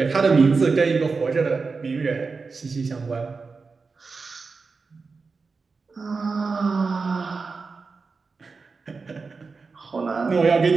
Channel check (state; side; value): quieter; left; 4.5 dB